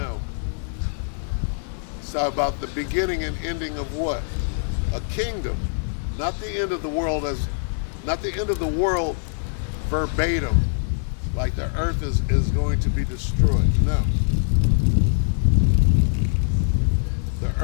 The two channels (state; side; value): silent; right; 63 dB below the other